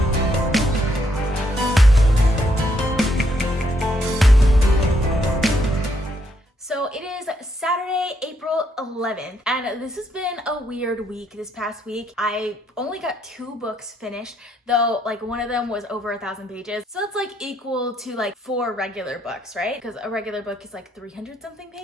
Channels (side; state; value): both; normal; correlation 0.74